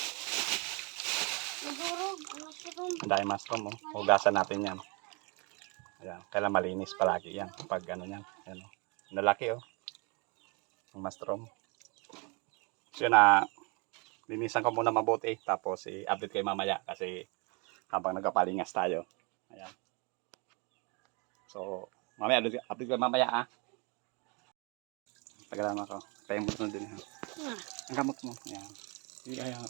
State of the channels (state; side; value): quieter; left; 31.5 dB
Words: Ang daming mushroom, oh. Hugasan natin yan. Ayan. Kailan malinis palagi yan. Pag ano yan. Ayan, oh. Nalaki, oh. Ang mushroom. So, yun na. Linisan ko muna mabuti. Tapos, i-update kayo mamaya. Kasi, habang nagpapalingas tayo. Ayan. So, mamaya, update ko mamaya, ah. Pagkalaman ko. Kaya mo din, ha. Ang gamot mo. Ayan. Ayan.